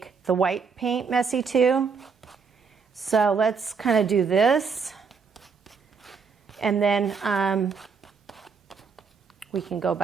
the white paint messy too. So let's kind of do this. And then we can go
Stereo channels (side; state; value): left; quieter; 5.5 dB